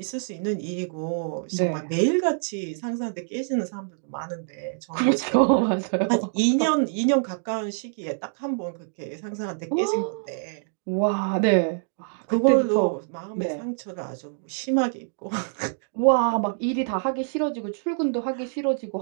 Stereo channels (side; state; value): left; silent; digital silence